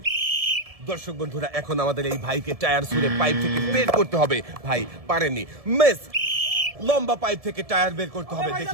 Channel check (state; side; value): late; left; 1.7 ms